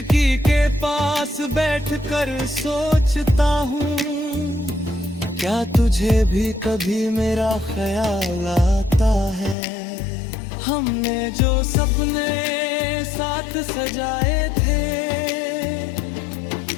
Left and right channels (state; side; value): drops out; right; at 9.6 s